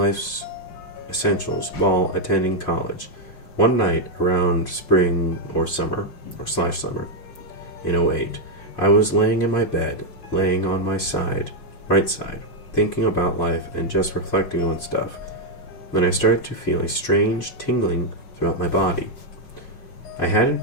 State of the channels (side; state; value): right; late; 5.5 ms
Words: essentials while attending college. One night around spring or summer, or slash summer, in '08, I was laying in my bed, laying on my right side, thinking about life and just reflecting on stuff, when I started to feel a strange tingling throughout my body. I hadn't